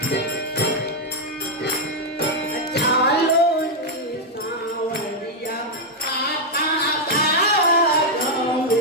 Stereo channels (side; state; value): both; normal; correlation 0.00